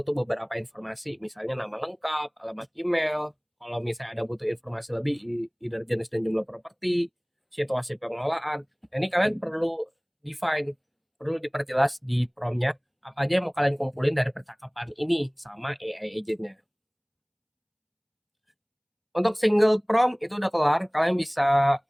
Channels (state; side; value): identical; both; correlation 1.00